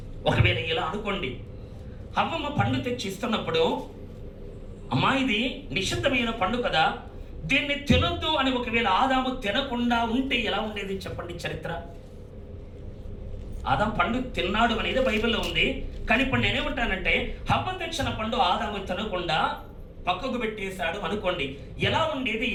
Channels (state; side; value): identical; both; correlation 1.00